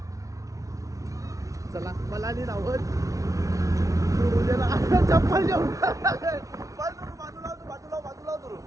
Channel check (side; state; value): left; late; 0.16 ms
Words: चला मला नाही राहत. चप्पल